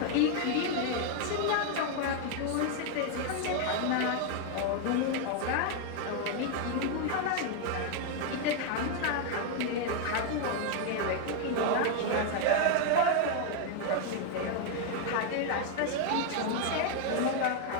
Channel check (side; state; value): both; different; correlation 0.00